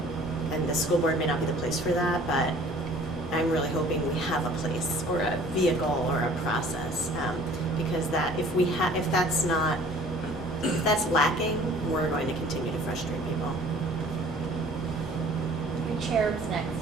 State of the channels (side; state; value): both; normal; correlation 0.51